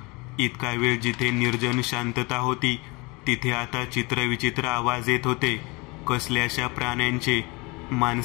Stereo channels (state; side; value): quieter; right; 26.5 dB